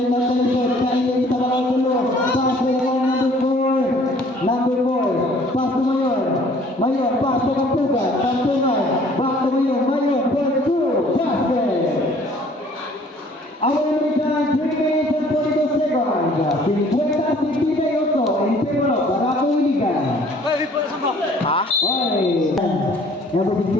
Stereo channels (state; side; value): normal; both; correlation 0.56